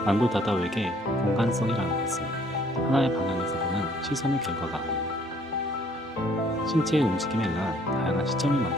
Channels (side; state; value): both; normal; correlation 0.61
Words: 안도 다다오에게 공간성이라는 것은 하나의 방향에서 보는 시선의 결과가 아닌 신체의 움직임에 의한 다양한 시점을